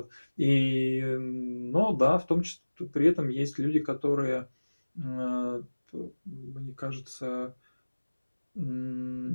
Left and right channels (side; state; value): both; inverted; correlation -1.00